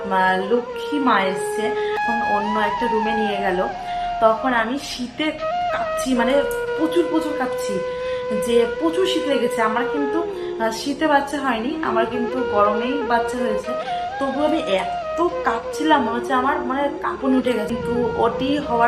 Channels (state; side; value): identical; both; correlation 1.00